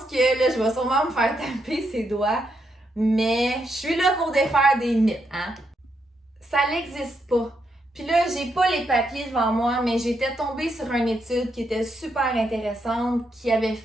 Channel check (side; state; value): both; normal; correlation 0.80